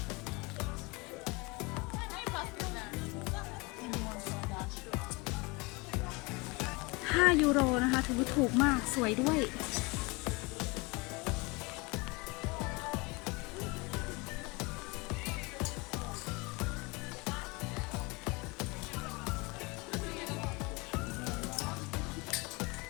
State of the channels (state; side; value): quieter; right; 26.4 dB